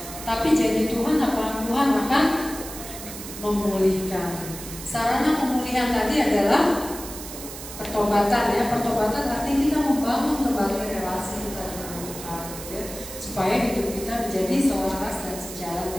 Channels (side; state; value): right; noise; hiss, 11 dB below the sound